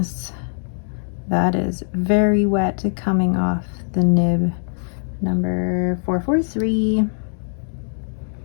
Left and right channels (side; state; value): right; silent; 65 dB below the other